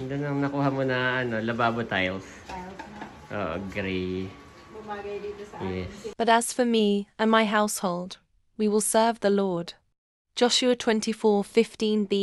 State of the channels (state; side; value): identical; both; correlation 1.00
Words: nang nakuha mo na lababo tiles. Oo, gray. Bumagay dito sa Yes. But as for me and my household, we will serve the Lord. Joshua